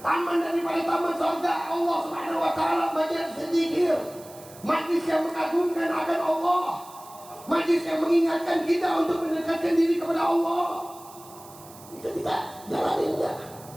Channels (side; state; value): right; noise; hiss, 20 dB below the sound